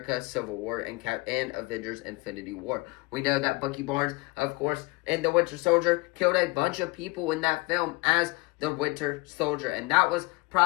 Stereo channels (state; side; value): quieter; right; 24.9 dB